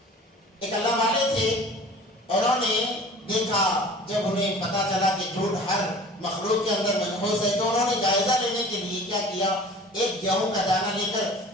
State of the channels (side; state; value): both; normal; correlation 0.44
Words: ایک اللہ والے تھے، انہوں نے دیکھا، جب انہیں پتا چلا کہ جھوٹ ہر مخلوق کے اندر منحوس ہے تو انہوں نے جائزہ لینے کے لیے کیا کیا، ایک گیہوں کا دانہ لے کر